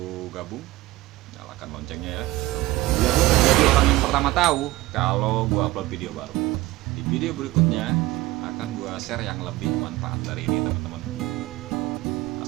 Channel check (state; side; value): quieter; left; 18.0 dB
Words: gabung, nyalakan loncengnya ya, biar lu jadi orang yang pertama tahu kalau gue upload video baru. Di video berikutnya akan gue share yang lebih manfaat dari ini teman-teman.